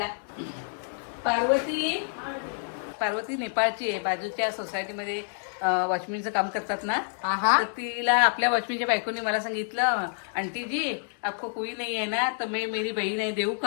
पार्वती नेपाळची आहे. बाजूच्या सोसायटीमध्ये वॉचमॅनचं काम करतात ना, आहा. तर तिला आपल्या वॉचमॅनच्या बायकोनी मला सांगितलं, आंटी जी आपको कोई नहीं है ना, तर मैं मेरी बहीण आहे देऊ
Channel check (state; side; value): silent; right; digital silence